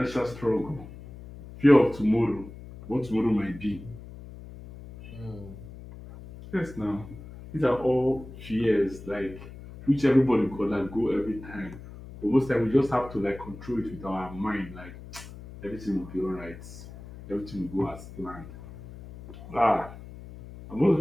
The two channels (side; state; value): left; noise; hum, 15 dB below the sound